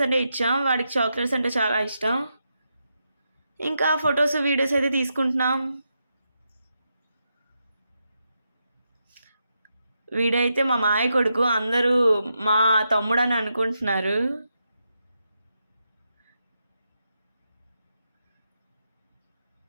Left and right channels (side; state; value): both; inverted; correlation -0.85